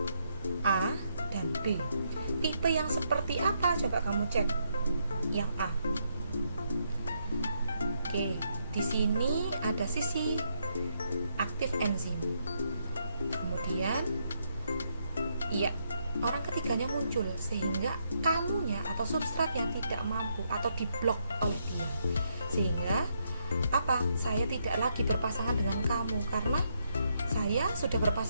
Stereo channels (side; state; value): both; inverted; correlation -0.77